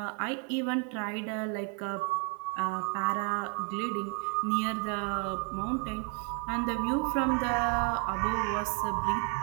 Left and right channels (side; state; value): left; quieter; 38.4 dB